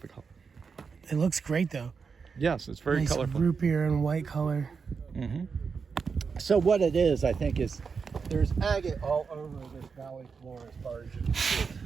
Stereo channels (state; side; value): quieter; left; 5.5 dB